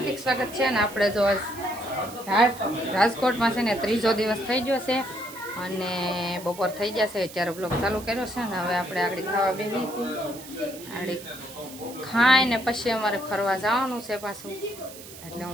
સ્વાગત છે. અને આપણે જો રાજકોટમાં છે ને ત્રીજો દિવસ થઈ ગયો છે અને બપોર થઈ ગયા છે ત્યારે બ્લોગ ચાલુ કર્યો છે ને હવે આપણે આગળ ખાવા બેસી છીએ. આગળ ખાઈને પછી અમારે ફરવા જવાનું છે પાછું, એટલે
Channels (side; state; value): right; noise; hiss, 16 dB below the sound